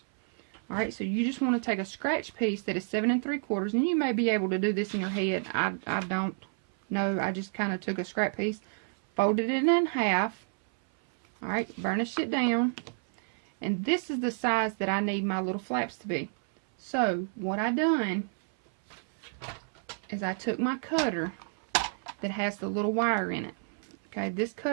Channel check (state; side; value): silent; left; 58 dB below the other